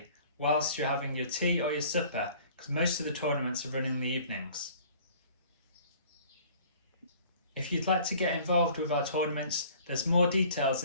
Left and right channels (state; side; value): inverted; both; correlation -0.51